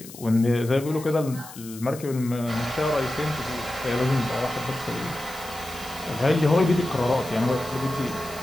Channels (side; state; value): left; noise; hiss, 16 dB below the sound